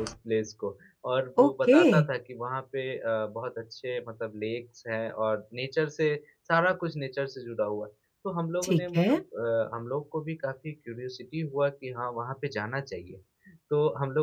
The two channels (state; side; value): identical; both; correlation 1.00